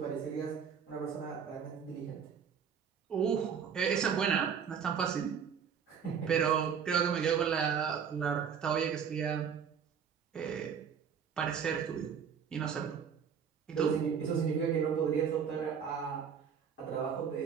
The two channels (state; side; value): quieter; left; 7.3 dB